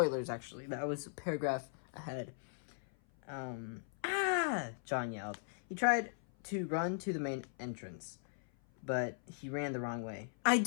actually. That was a paragraph ahead. John yelled. He tried to run to the main entrance, but he ran the wrong way. "I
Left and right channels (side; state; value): right; silent; 52 dB below the other